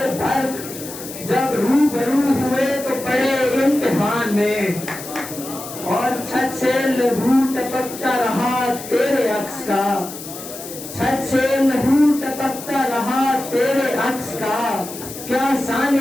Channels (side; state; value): left; noise; hiss, 12 dB below the sound